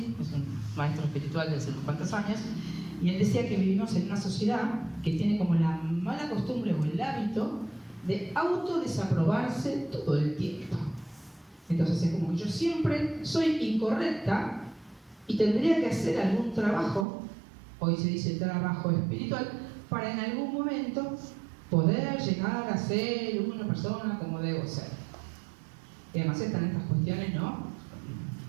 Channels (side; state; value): left; drops out; at 17.1 s